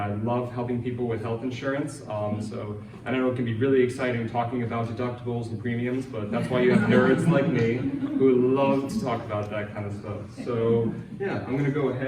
love helping people with health insurance. I know it can be really exciting talking about deductibles and premiums, but that's why you have nerds like me who love to talk about that kind of stuff. So yeah, I'm gonna go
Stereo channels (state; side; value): identical; both; correlation 1.00